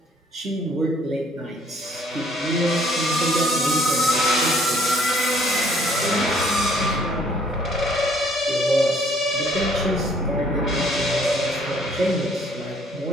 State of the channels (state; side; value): normal; both; correlation 0.60